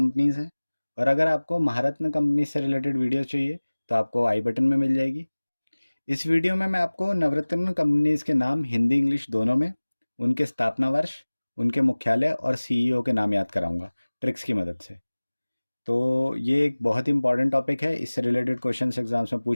हैं और अगर आपको महारत्न कंपनी से रिलेटेड वीडियो चाहिए तो आपको आई बटन में मिल जाएगी। इस वीडियो में मैं आपको नवरत्न कंपनीज़ के नाम हिंदी इंग्लिश दोनों में, उनके स्थापना वर्ष, उनके मुख्यालय और सीईओ के नाम याद कराऊंगा ट्रिक्स की मदद से। तो ये एक बहुत ही इंपॉर्टेंट टॉपिक है, इससे रिलेटेड क्वेश्चन एग्जाम्स में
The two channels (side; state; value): both; inverted; correlation -1.00